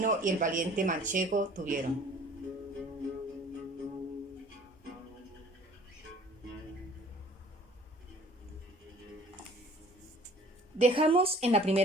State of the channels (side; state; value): both; normal; correlation 0.52